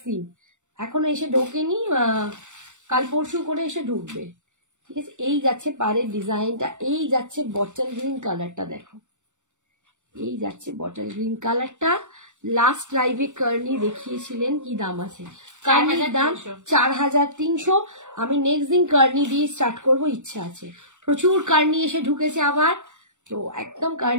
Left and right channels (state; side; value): late; left; 0.85 ms